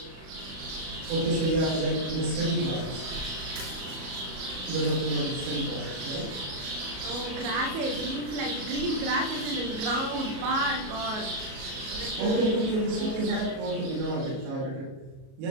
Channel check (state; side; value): late; left; 37 ms